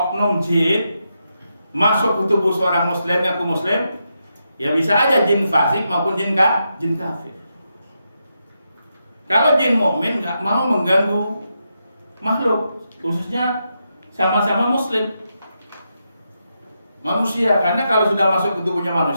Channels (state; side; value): inverted; both; correlation -0.84